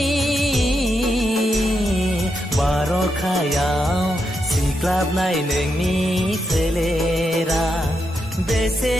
बार'खायाव सिग्लाबनाय नोंनि सोलेरा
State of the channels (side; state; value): both; normal; correlation 0.83